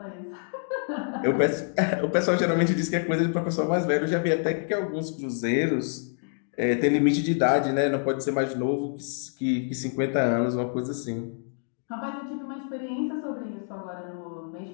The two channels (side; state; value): right; silent; 60 dB below the other